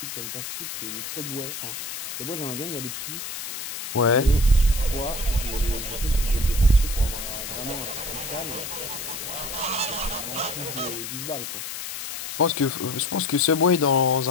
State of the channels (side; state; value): left; noise; hiss, 6 dB below the sound